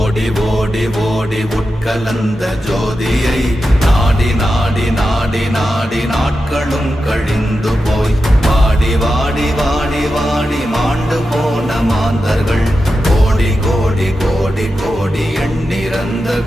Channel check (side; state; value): both; normal; correlation 0.90